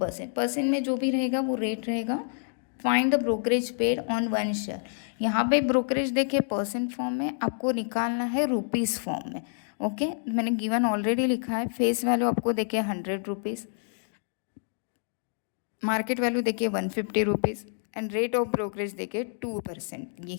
परसेंट में जो भी रहेगा वो रेट रहेगा। Find the brokerage paid on 1 share. यहाँ पे ब्रोकरेज देखिए परसेंट फॉर्म में, आपको निकालना है रुपीज़ फॉर्म में। ओके, मैंने गिवन ऑलरेडी लिखा है। फेस वैल्यू आपको देखिए 100 रुपीज़, मार्केट वैल्यू देखिए 150 rupees and rate of brokerage देखिए 2%।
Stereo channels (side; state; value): right; silent; digital silence